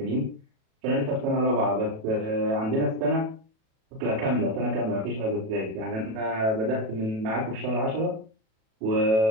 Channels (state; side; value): late; left; 37 ms